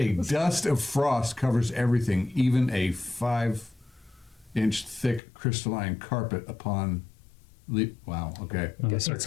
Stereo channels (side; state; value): right; drops out; at 5.2 s